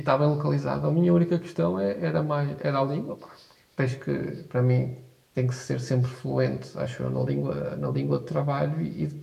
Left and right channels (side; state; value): both; identical; correlation 1.00